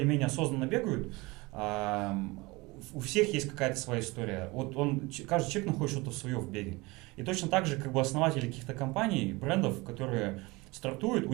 осознанно бегают, у всех есть какая-то своя история. Вот каждый человек находит что-то свое в беге. И точно так же, как бы основатели каких-то компаний, брендов, которые стартуют, у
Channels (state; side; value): quieter; left; 23.5 dB